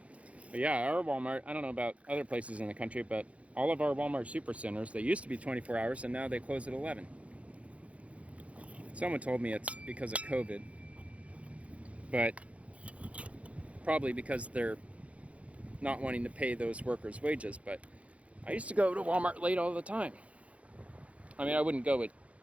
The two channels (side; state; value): left; late; 0.064 ms